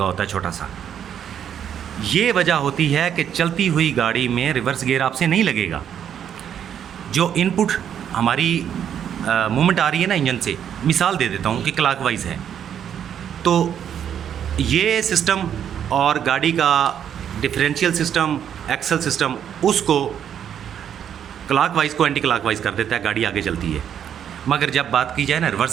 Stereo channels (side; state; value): left; quieter; 9.1 dB